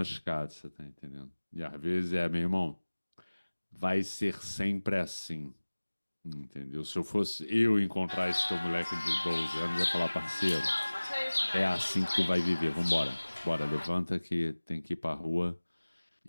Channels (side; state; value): both; inverted; correlation -1.00